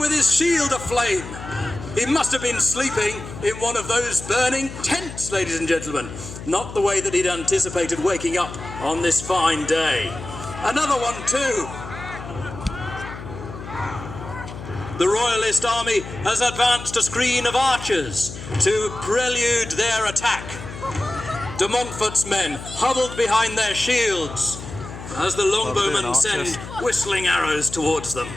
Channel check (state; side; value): noise; left; hum, 12 dB below the sound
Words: with his shield aflame. He must have been sleeping in one of those burning tents, ladies and gentlemen. Not the way that he'd anticipated waking up on this fine day. Another one too. The Royalist army has advanced a screen of archers to prelude their attack. De Montfort's men huddled behind their shields as the longbowmen send whistling arrows towards them.